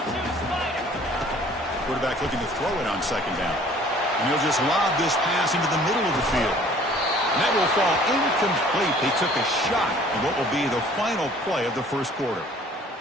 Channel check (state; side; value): normal; both; correlation 0.53